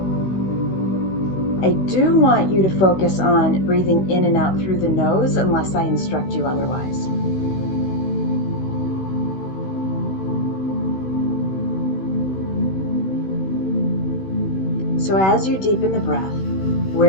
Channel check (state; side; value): late; right; 16 ms